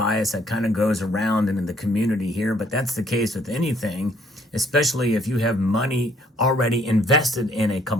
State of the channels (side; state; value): both; normal; correlation 0.64